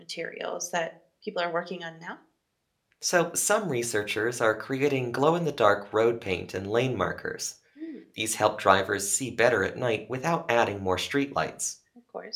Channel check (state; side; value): identical; both; correlation 1.00